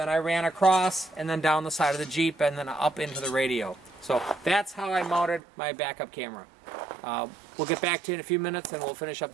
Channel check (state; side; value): drops out; left; at 5.4 s